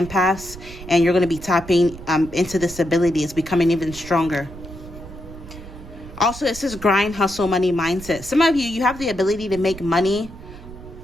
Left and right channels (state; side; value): noise; right; rumble, 15 dB below the sound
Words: and you're going to be tapping into this ability. It's becoming even stronger. Also, it says grind, hustle, money mindset. Some of you have the ability to make money